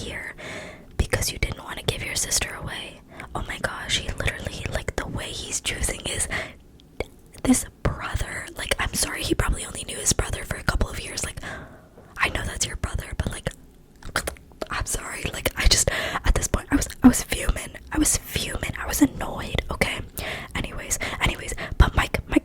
because you didn't want to give your sister away. Oh my gosh, he literally, like, the way he's choosing is this brother. Like, I'm sorry, he probably only knew his brother for a couple of years. Like, I know that's your brother, but like, I'm sorry. Like, I just, at this point, I was fuming. I was annoyed. Okay. Anyways, but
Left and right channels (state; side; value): identical; both; correlation 1.00